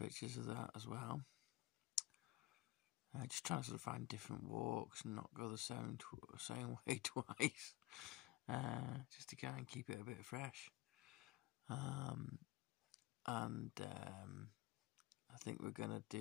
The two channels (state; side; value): quieter; right; 18.5 dB